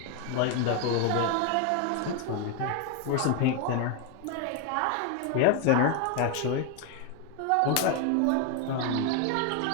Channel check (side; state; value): both; different; correlation 0.01